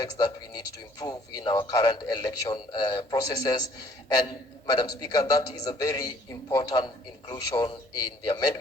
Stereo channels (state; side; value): normal; both; correlation 0.59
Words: that we need to improve in our current election processes. And Madam Speaker, that is a very important inclusion in the